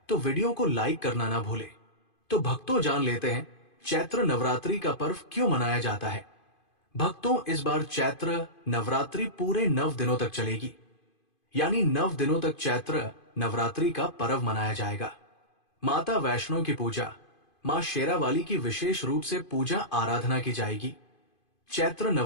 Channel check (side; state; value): right; late; 2.5 ms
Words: तो वीडियो को लाइक करना ना भूलें। तो भक्तों, जान लेते हैं चैत्र नवरात्रि का पर्व क्यों मनाया जाता है। भक्तों, इस बार चैत्र नवरात्रि पूरे 9 दिनों तक चलेगी, यानी 9 दिनों तक चैत्र नवरात्रि का पर्व मनाया जाएगा। माता वैष्णो की पूजा, मां शेरावाली की विशेष रूप से पूजा आराधना की जाएगी। चैत्र